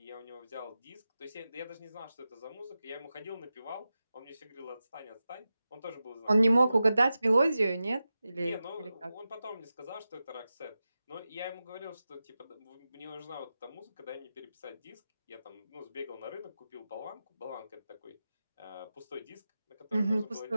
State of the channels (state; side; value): inverted; both; correlation -0.93